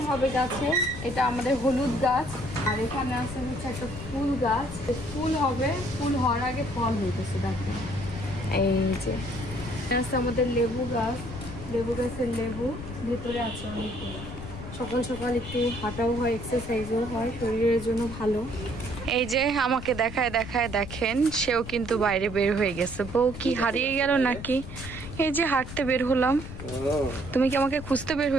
হবে গাছে। এটা আমাদের হলুদ গাছ, আর এখানে আছে হচ্ছে একটা ফুল গাছ। ফুল হবে, ফুল হওয়ার আগে ফল হইতেছে। দেখেন এই যে আছে আমাদের লেবু গাছ, লেবু গাছের লেবু ভেতরে আছে অনেকগুলো। সকাল সকাল একটু হাঁটাও হয়, এক্সারসাইজও হয়, শরীরের জন্য ভালো। এই যে আমাকে দেখায় দেখায় দেখেন, সেও কিন্তু বাইরে বের হয়ে গেছে। বউ কি হারিয়ে গেল নাকি? এই যে হাঁটতে বের হলাম। তুমি কি আমাকে খুঁজতে বের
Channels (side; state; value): left; noise; rumble, 11 dB below the sound